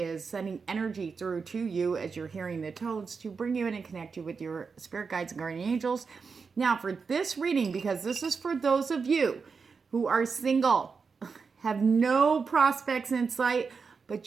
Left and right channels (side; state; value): left; quieter; 5.2 dB